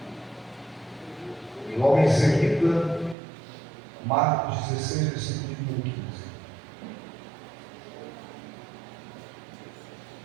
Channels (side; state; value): left; drops out; at 3.2 s